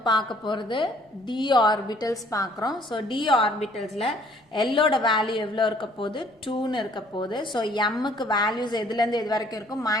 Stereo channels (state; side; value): normal; both; correlation 0.59